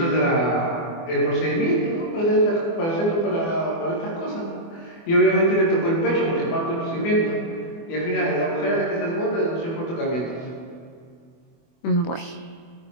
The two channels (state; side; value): late; right; 24 ms